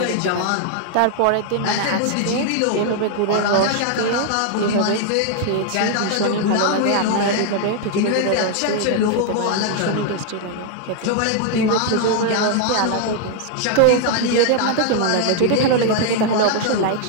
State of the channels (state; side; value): different; both; correlation 0.00